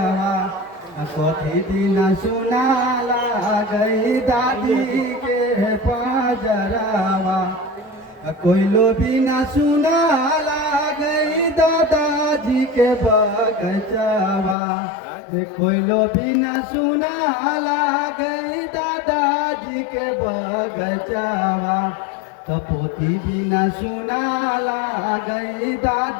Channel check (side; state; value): right; drops out; at 14.6 s